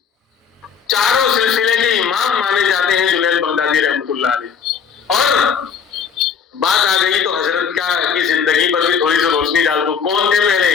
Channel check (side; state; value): right; quieter; 6.8 dB